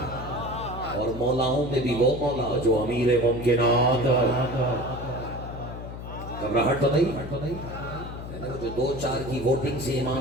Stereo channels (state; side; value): noise; left; hum, 10 dB below the sound